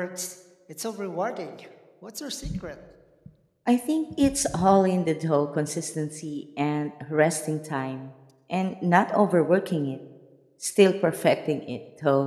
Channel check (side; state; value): both; identical; correlation 1.00